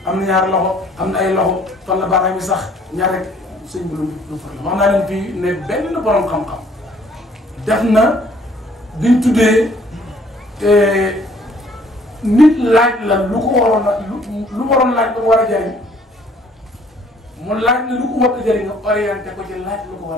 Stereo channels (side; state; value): both; normal; correlation 0.60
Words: am na ñaar loxo am na ay loxo fan la baaraam yi sax ñaar rek sëñ bi lu problème wax naa leen fii ne benn borom xam-xam def na duñ tuddee nit laaj la lu ko waroon a lu waroon laaj lu ko war a jëriñ mu laaj na lu ko war a jëriñ nga orienté ko ci laaj lu ko